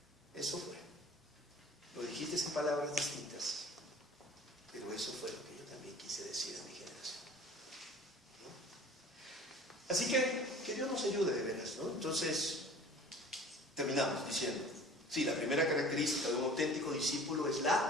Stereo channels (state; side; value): normal; both; correlation 0.45